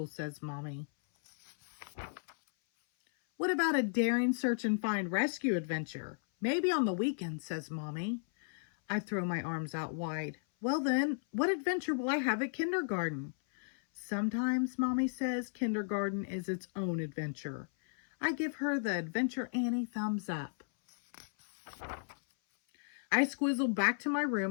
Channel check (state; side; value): silent; right; 55 dB below the other